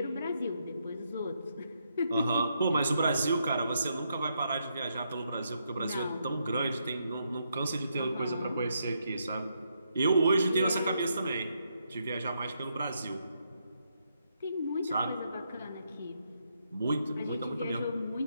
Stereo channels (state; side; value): inverted; both; correlation -0.78